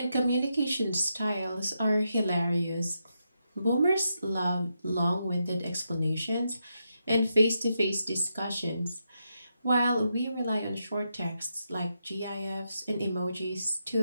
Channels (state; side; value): inverted; both; correlation -0.84